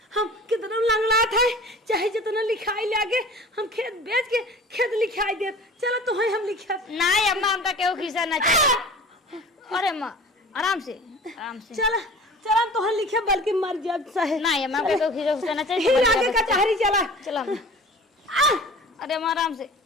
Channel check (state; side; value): normal; both; correlation 0.42